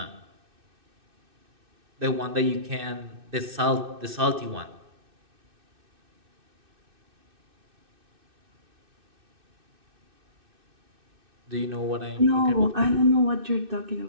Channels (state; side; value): late; left; 2.6 ms